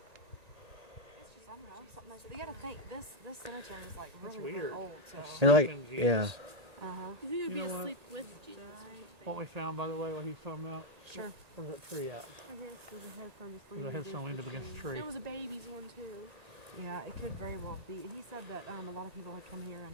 It's just, I don't know, something nice. You gotta think, this cemetery is like really old, so. And like, yeah. Uh-huh. You think it would be You know asleep with Jesus or something? What we found, by the way, what he's talking about? Sure. Where's that tree at? I hear there's a headstone just There's a headstone leaned up against the tree. There was a baby's one too. Yeah, it could very well be. He said that a lot of people had come here and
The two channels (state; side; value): late; left; 1.9 ms